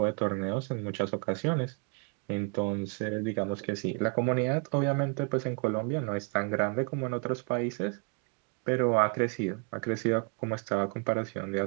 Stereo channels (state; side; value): quieter; left; 37.4 dB